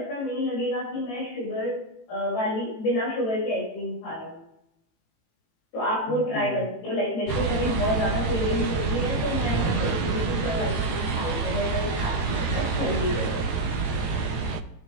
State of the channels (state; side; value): late; right; 18 ms